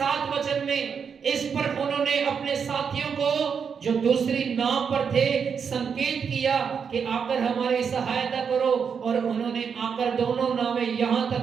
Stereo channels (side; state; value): left; quieter; 6.6 dB